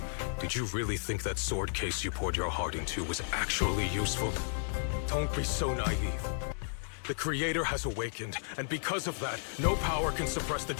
did you really think that sword case you poured your heart into was actually useful? Don't be so naive. The Creator has awakened, and because of that, no power can suppress the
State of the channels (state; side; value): silent; right; digital silence